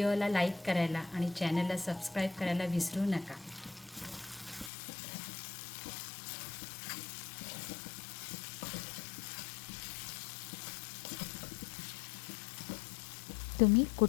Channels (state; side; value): drops out; right; at 4.7 s